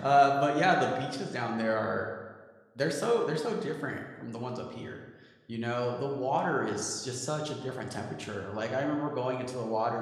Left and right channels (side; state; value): both; identical; correlation 1.00